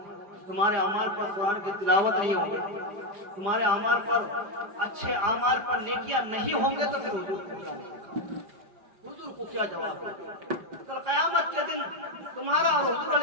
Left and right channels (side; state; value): left; late; 4.9 ms